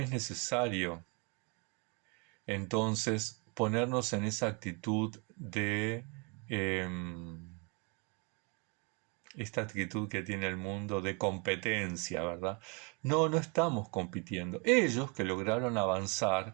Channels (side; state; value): left; quieter; 32.8 dB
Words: necesario entonces ponernos en esa actitud de esta actitud que tiene el mundo de competencia, ¿verdad? No estamos compitiendo. Ellos que lograron